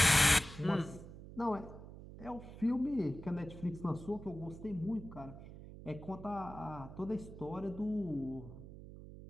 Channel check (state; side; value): noise; right; hum, 14 dB below the sound